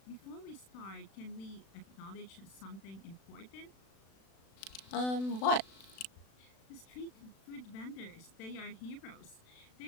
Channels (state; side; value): late; right; 36 ms